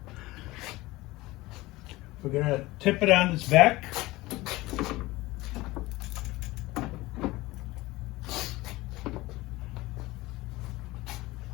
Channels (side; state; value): right; quieter; 19.7 dB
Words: We're going to tip it on its back.